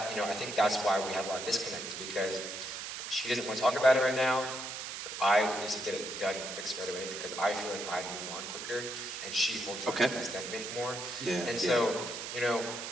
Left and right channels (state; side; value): noise; right; hiss, 7 dB below the sound